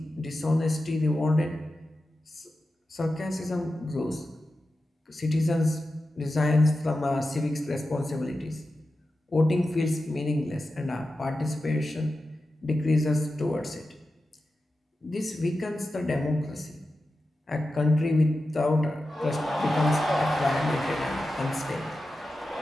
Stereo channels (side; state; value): both; normal; correlation 0.92